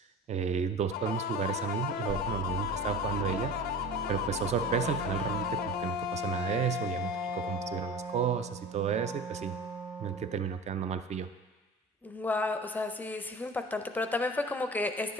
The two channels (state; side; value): normal; both; correlation 0.37